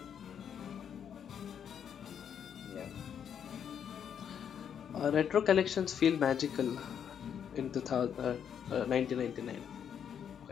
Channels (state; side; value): quieter; right; 8.3 dB